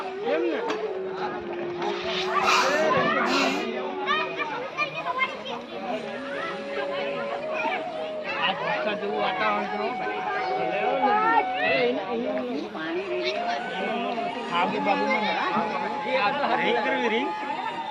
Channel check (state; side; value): identical; both; correlation 1.00